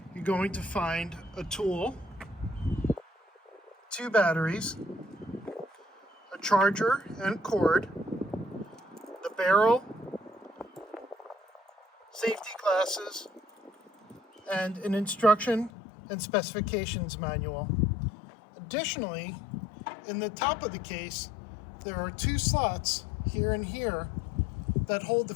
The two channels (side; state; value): right; drops out; at 15.7 s